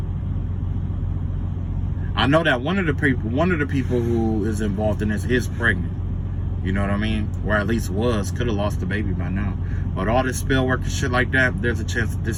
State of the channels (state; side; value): identical; both; correlation 1.00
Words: I know that one of the people who is involved in this is pregnant. You know what I mean? Or at least was. Could have lost the baby by now. But all this spell work and shit like that, there's a chance that